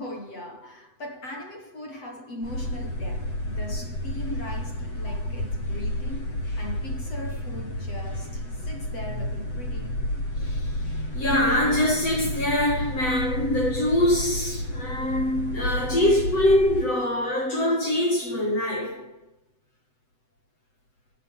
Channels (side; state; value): right; late; 7.9 ms